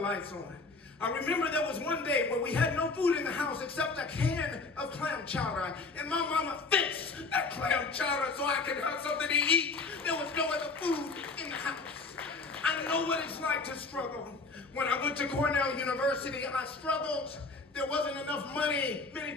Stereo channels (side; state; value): right; quieter; 3.9 dB